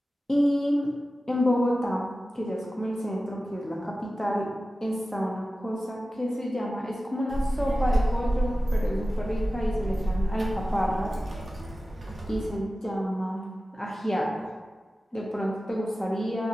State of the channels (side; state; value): both; normal; correlation 0.95